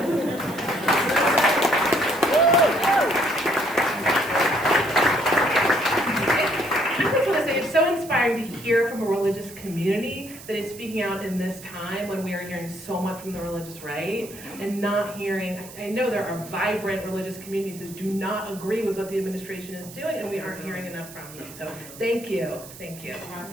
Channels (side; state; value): right; noise; hiss, 16 dB below the sound